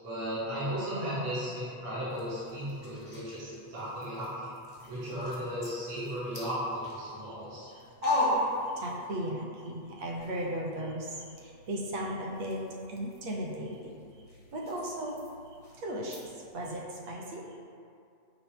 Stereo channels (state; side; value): late; left; 8.2 ms